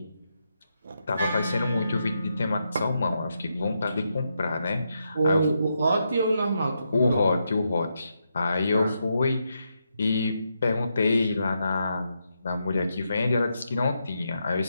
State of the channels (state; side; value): inverted; both; correlation -0.83